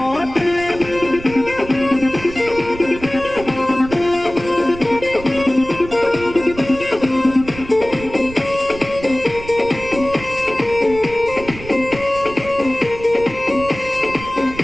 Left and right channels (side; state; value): right; noise; rumble, 14 dB below the sound